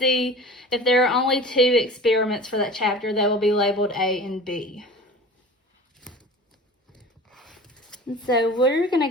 If there are only 2 experiments for that chapter, they will be labeled A and B. And so we're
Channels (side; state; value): both; normal; correlation 0.39